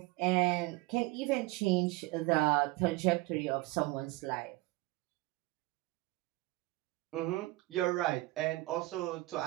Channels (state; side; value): quieter; left; 20.6 dB